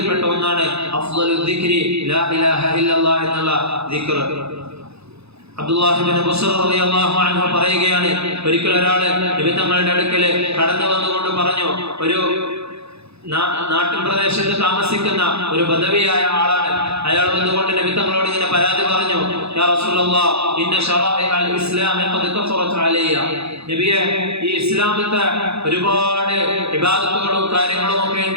ഒന്നാണ് അഫ്ളലുൽ ദിക്രി ലാ ഇലാഹ ഇല്ലല്ലാഹ് എന്നുള്ള ദിക്ർ. അബ്ദുല്ലാഹി ഇബ്നു ബുസ്ർ റളിയല്ലാഹു അൻഹു പറയുകയാണ്, ഒരിക്കൽ ഒരാൾ നബി തങ്ങളുടെ അടുക്കൽ കടന്നു വന്നുകൊണ്ട് പറഞ്ഞു, ഒരു നാട്ടിൻ പ്രദേശത്ത് താമസിക്കുന്ന ഒരു ബദവിയായ ആളാണ്. അയാൾ വന്നുകൊണ്ട് നബി തങ്ങളോട് ഇങ്ങനെ പരാതി പറഞ്ഞു, യാ റസൂലല്ലാഹ് ഇന്ന ശറാഇഅൽ ഇസ്ലാമി ഖദ് കഫറത് അലയ്യ. നബിയെ, ഈ ഇസ്ലാമിത്തെ ഒരുപാട് ഇബാദത്തുകളും കാര്യങ്ങളും ഒക്കെ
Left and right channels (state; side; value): late; left; 0.79 ms